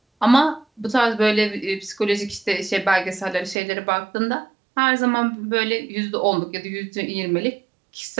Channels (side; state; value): left; drops out; at 3.6 s